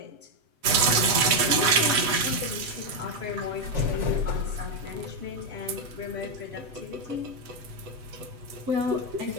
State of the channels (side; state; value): left; late; 8.1 ms